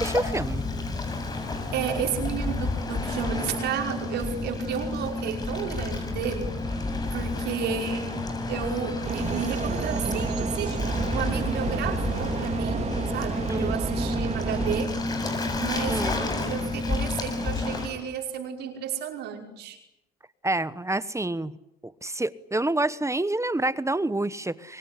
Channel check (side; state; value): both; normal; correlation 0.56